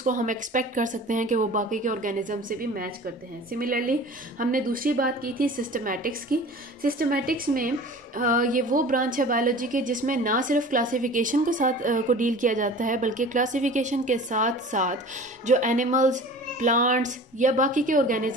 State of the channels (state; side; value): normal; both; correlation 0.41